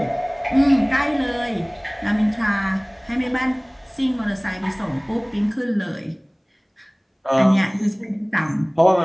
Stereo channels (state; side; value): identical; both; correlation 1.00